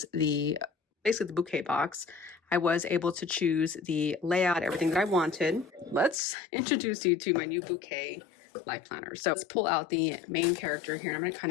basically the bouquet box. I was able to choose the layout, everything that I wanted. Let's introduce you to my new Bouquet life planner. So let's pull out the main character here. I'm going to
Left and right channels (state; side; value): drops out; right; at 6.2 s